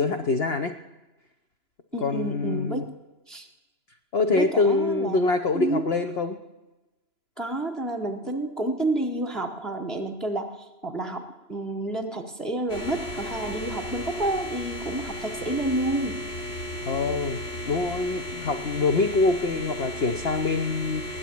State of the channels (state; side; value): late; right; 2.9 ms